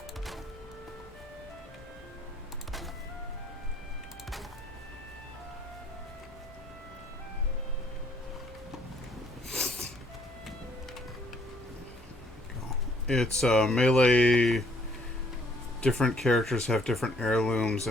It's melee. Different characters have different heirlooms,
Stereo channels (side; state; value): both; normal; correlation 0.64